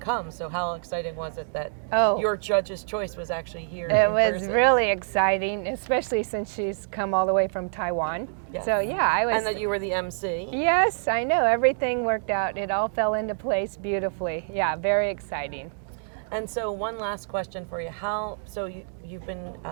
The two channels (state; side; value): silent; left; digital silence